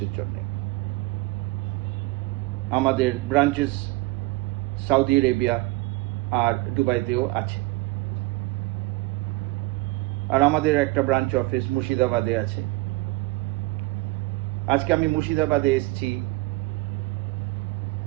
জন্য। আমাদের ব্রাঞ্চেস সৌদি আরবিয়া আর দুবাইতেও আছে, আর আমাদের একটা ব্রাঞ্চ অফিস মুর্শিদাবাদে আছে। আজকে আমি মুর্শিদাবাদে এসেছি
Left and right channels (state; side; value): quieter; left; 21.8 dB